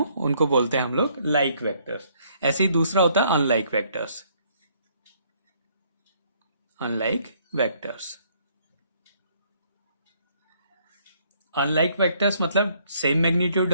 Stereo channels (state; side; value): inverted; both; correlation -0.66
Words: उनको बोलते हैं हम लोग लाइक वेक्टर्स। ऐसे ही दूसरा होता है unlike vectors. Unlike vectors, unlike vectors मतलब same magnitude